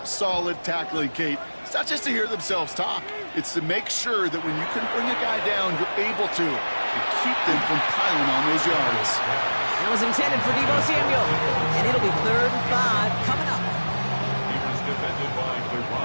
solid tackling, Kate. It's not just to hear themselves talk. It's to make sure that when you can bring a guy down, you're able to and keep them from piling on those yards. That was intended for Deebo Samuel. And it'll be 3rd and 5 coming up. He was defended by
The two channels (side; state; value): both; inverted; correlation -1.00